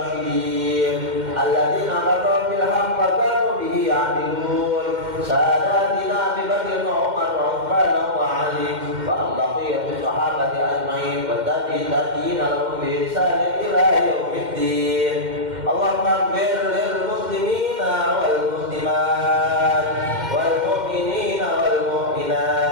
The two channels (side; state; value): left; late; 2.1 ms